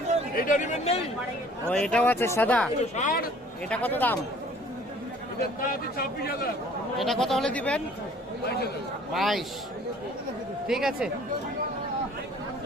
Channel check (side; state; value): both; normal; correlation 0.53